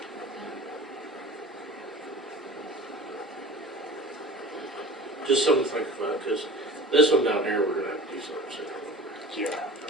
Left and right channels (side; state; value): both; normal; correlation 0.39